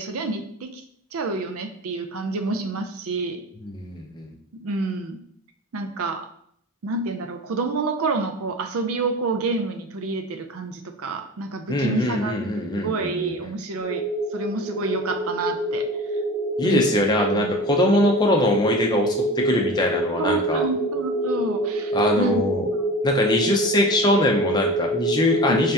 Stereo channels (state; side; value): normal; both; correlation 0.34